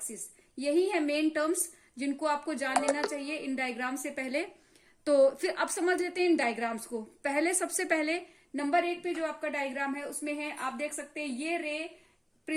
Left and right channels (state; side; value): identical; both; correlation 1.00